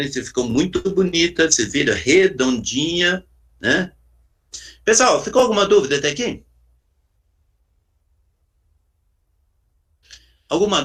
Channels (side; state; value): both; identical; correlation 1.00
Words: ficou muito bonita, você vira redondinha, né? Pessoal, ficou alguma dúvida até aqui? Alguma